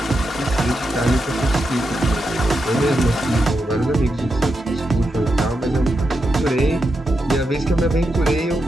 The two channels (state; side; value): normal; both; correlation 0.86